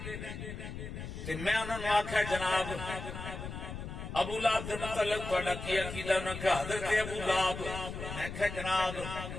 تے میں انہوں نے آکھا جناب ابو لہب دے متعلق تہاڈا کی عقیدہ انہوں نے کہا حضرت ابو لہب میں کہا جناب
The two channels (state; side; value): noise; left; rumble, 8 dB below the sound